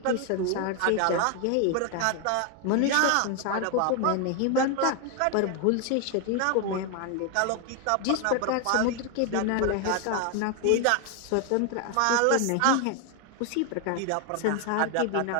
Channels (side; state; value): both; different; correlation 0.01